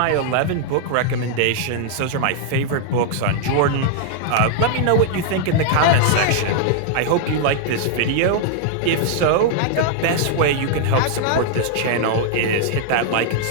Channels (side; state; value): both; different; correlation -0.01